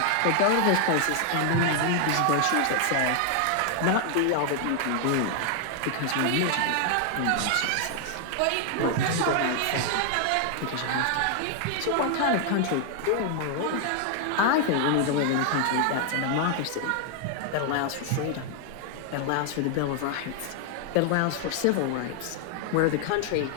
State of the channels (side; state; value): both; different; correlation 0.00